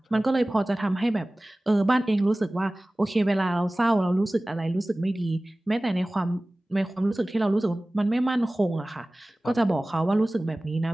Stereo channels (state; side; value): normal; both; correlation 0.98